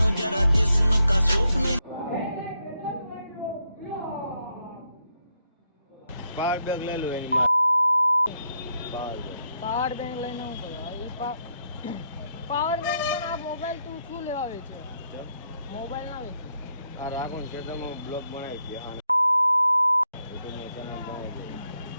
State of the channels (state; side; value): inverted; both; correlation -0.79